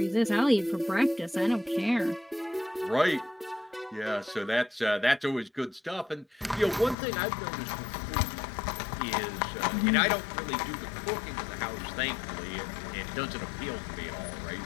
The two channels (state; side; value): drops out; right; at 7.0 s